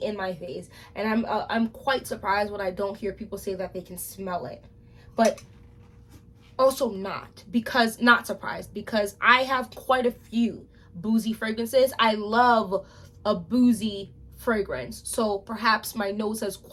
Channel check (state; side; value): identical; both; correlation 1.00